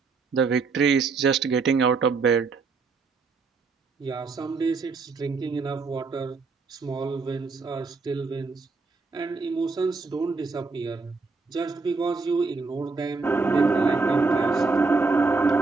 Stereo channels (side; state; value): left; quieter; 4.3 dB